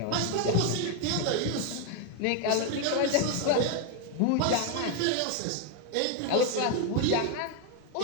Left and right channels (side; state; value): both; different; correlation 0.01